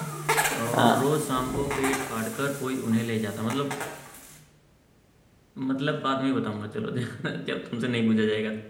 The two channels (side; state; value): both; identical; correlation 1.00